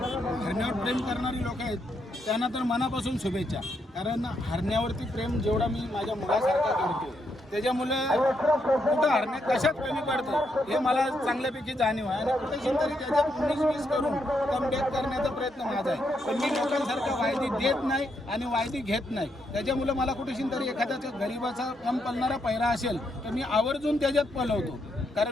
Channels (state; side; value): normal; both; correlation 0.79